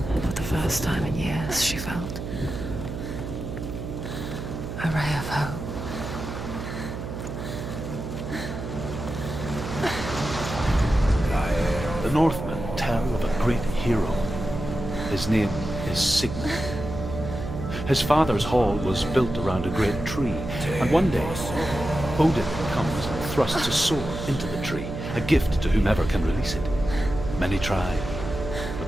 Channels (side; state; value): right; noise; hum, 7 dB below the sound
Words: For the first time in years, she felt a ray of hope. The Northmen tell of a great hero. His name is Sigmund. His father's hall was built around a great tree, and one day Odin comes and thrusts a sword into the tree, a gift to whomever can release it. Many try, but